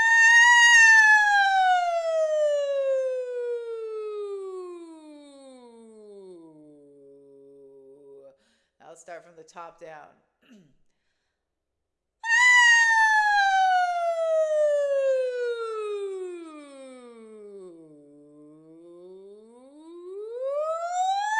I'll start from the top down.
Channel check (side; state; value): both; identical; correlation 1.00